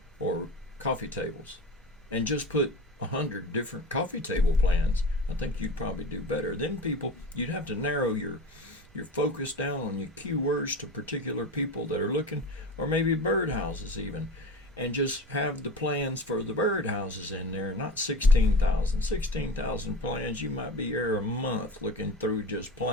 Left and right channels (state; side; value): normal; both; correlation 0.31